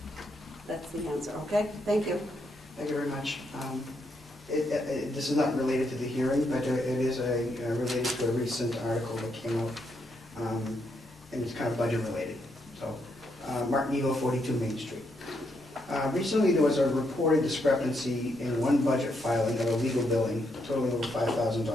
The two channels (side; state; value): both; normal; correlation 0.78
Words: that's the answer, okay? Thank you. Thank you very much. This is not related to the hearing, but it is related to a recent article that came out, and it's kind of budget related. So, Martin Eagle, 42 Main Street. Recently, there was a reported discrepancy in one budget filing of a legal billing totaling over